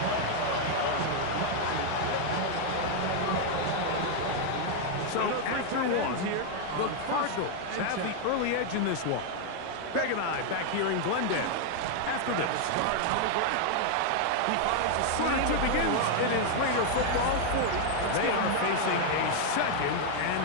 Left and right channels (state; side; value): different; both; correlation 0.00